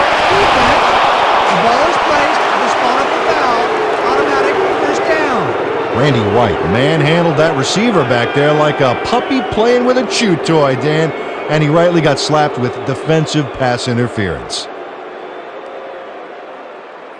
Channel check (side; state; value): both; identical; correlation 1.00